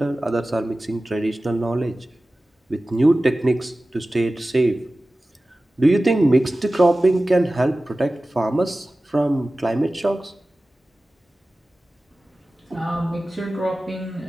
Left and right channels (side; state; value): both; normal; correlation 0.96